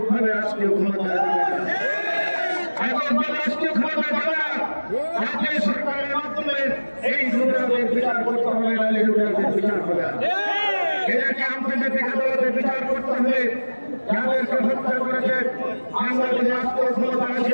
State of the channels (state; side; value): inverted; both; correlation -1.00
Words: রাষ্ট্রীয় ক্ষমতা রাষ্ট্রীয় ক্ষমতা যাবে না। জাতীয় সরকারের মাধ্যমে এই লুটেরাদের বিচার করতে হবে, নাহলে লুটেরাদের বিচার হবে না। এদেরকে আন্তর্জাতিক আদালতে বিচার করতে হবে। যাদেরকে হত্যা করেছে আমরা যদি রাষ্ট্রীয় ক্ষমতা